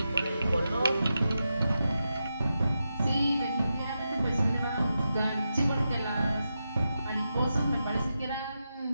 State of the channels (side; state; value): both; inverted; correlation -0.88